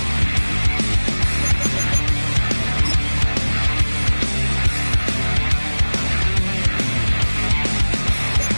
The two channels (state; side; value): inverted; both; correlation -1.00